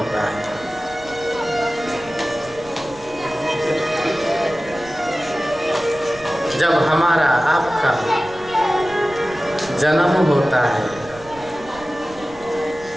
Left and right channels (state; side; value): noise; right; rumble, 21 dB below the sound